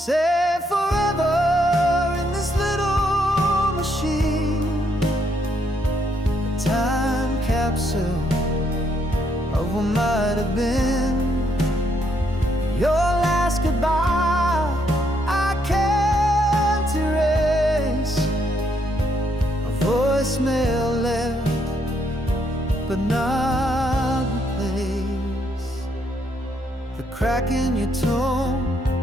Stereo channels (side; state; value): both; normal; correlation 0.74